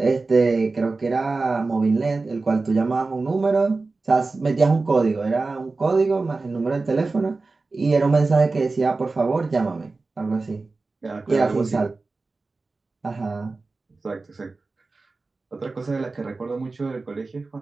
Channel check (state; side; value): quieter; left; 3.7 dB